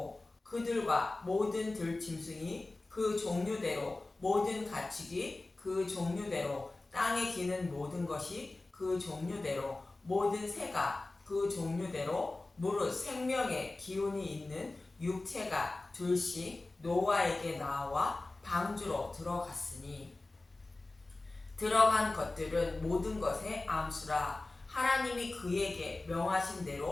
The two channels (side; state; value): right; quieter; 3.1 dB